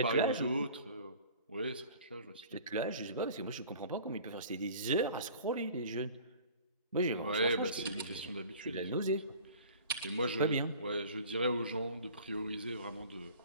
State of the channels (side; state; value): both; inverted; correlation -0.46